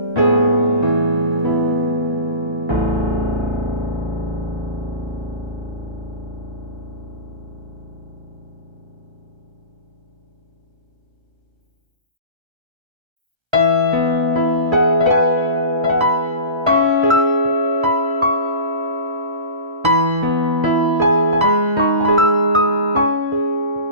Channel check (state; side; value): late; left; 1.3 ms